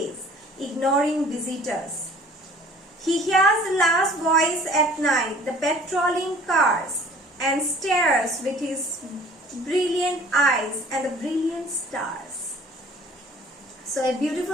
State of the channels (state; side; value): normal; both; correlation 0.50